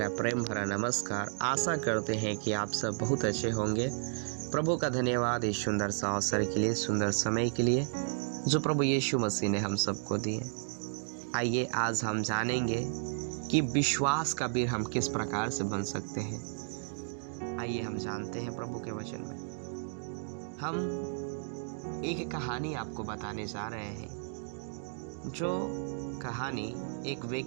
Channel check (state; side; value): silent; left; digital silence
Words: प्रेम भरा नमस्कार। आशा करते हैं कि आप सब बहुत अच्छे होंगे। प्रभु का धन्यवाद इस सुंदर सा अवसर के लिए, सुंदर समय के लिए जो प्रभु यीशु मसीह ने हम सबको दिए। आइए आज हम जानेंगे कि विश्वास का वीर हम किस प्रकार से बन सकते हैं। आइए हम जानते हैं प्रभु के वचन में। हम एक कहानी आपको बताने जा रहे हैं, जो कहानी एक